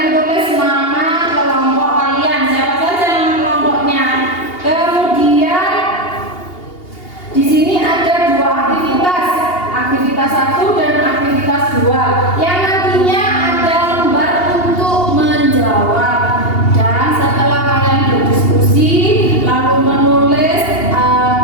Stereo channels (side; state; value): right; late; 2.8 ms